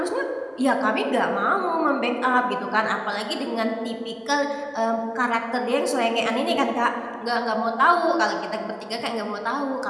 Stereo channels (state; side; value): identical; both; correlation 1.00